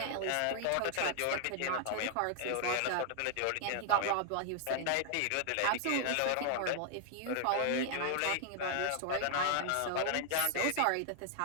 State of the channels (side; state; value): both; different; correlation 0.00